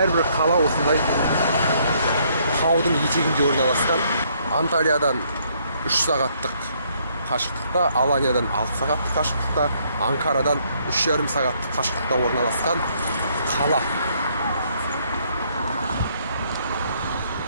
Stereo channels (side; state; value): both; inverted; correlation -0.68